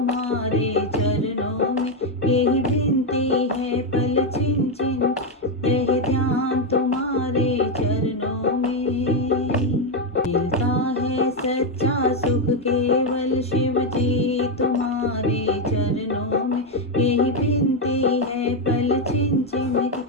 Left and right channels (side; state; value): both; normal; correlation 0.05